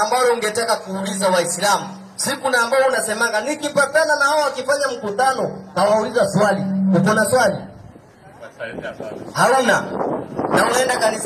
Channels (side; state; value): both; identical; correlation 1.00